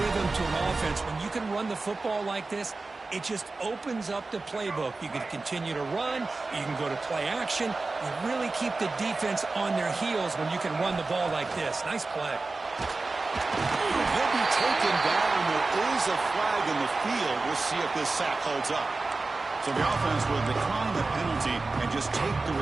to an offense. When you can run the football like this, it just opens up the playbook. You can continue to run. You can go to play action. You really keep the defense on their heels when you can run the ball like this. Nice play. He'll be taken down. There is a flag in the field. We'll see if this sack holds up. So the offense will decline the penalty and just take the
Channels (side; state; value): left; quieter; 3.6 dB